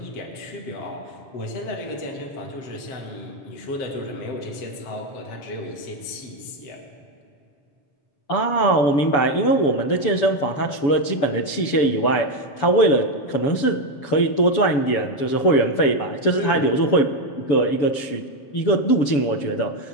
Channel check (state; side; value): late; right; 7.0 ms